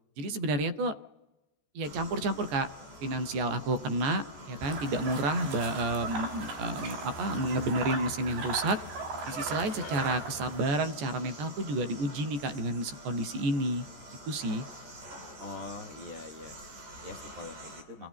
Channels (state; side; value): late; left; 14 ms